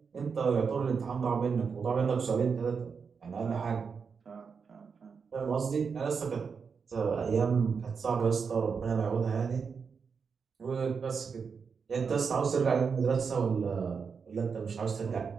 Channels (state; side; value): quieter; left; 5.7 dB